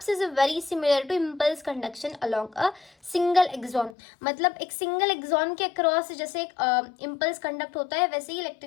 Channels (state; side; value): drops out; right; at 4.0 s